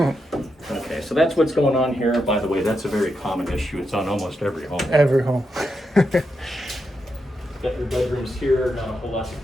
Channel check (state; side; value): normal; both; correlation 0.84